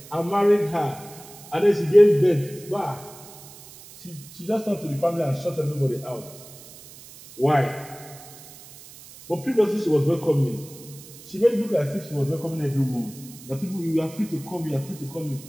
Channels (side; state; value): right; noise; hiss, 19 dB below the sound